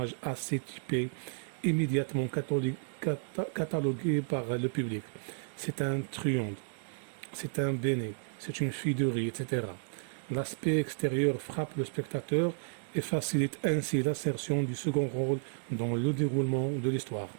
assez typés, immédiatement catalogués par le public. C'est un truand, c'est un béné, c'est une fille de riz, etc. L'aspect extérieur frappe le spectateur et facilite ainsi l'insertion du second rôle dans le déroulement de l'histoire.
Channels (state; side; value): silent; left; digital silence